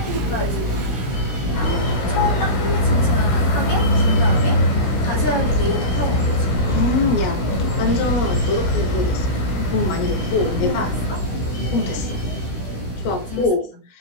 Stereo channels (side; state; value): right; late; 16 ms